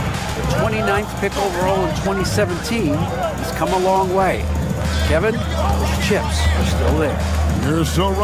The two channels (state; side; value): identical; both; correlation 1.00